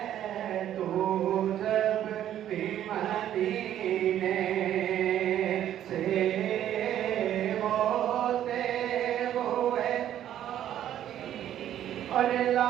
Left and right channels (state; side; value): quieter; left; 11.3 dB